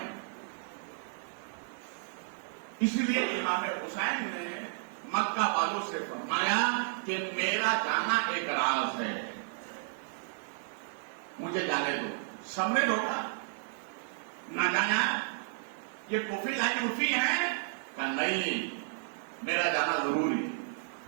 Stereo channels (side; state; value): left; silent; digital silence